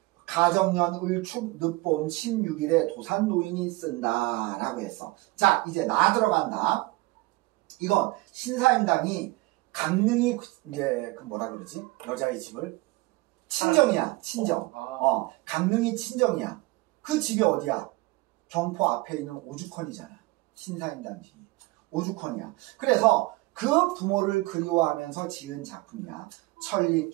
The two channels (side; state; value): left; quieter; 21.5 dB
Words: 가정년 을축 늦봄 16일에 도산 노인이 쓴다 라고 했어. 자 이제 나 들어간다. 이건 신사임당이 강릉이 이제 그 뭐라 그러지? 여자의 집을 친정이야. 친정. 강릉이 친정이야. 그 집이 어디야? 경포 앞에 있는 오죽헌이잖아. 신사임당 집이 오죽헌이야. 그래서 그 부모를 그리워하면서 지은 작품이야.